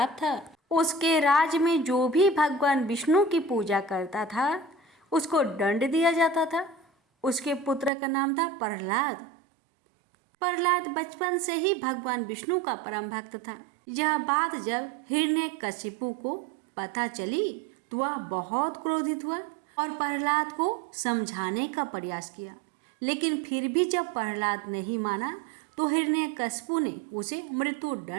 था। उसके राज्य में जो भी भगवान विष्णु की पूजा करता था उसको दंड दिया जाता था। उसके पुत्र का नाम था प्रहलाद। प्रहलाद बचपन से ही भगवान विष्णु का परम भक्त था। यह बात जब हिरण्यकशिपु को पता चली तो वह बहुत क्रोधित हुआ और प्रहलाद को समझाने का प्रयास किया, लेकिन फिर भी जब प्रहलाद नहीं माना तो हिरण्यकशिपु ने उसे मृत्यु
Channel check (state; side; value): drops out; left; at 7.9 s